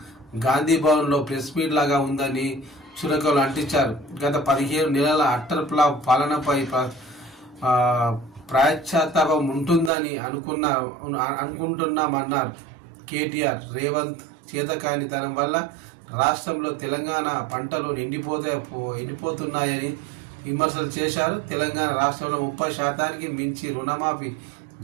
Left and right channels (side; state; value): left; drops out; at 9.9 s